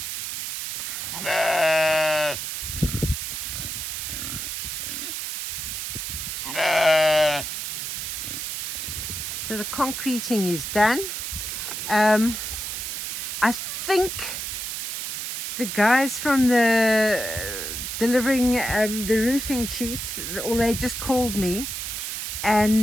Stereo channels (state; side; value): noise; right; hiss, 4 dB below the sound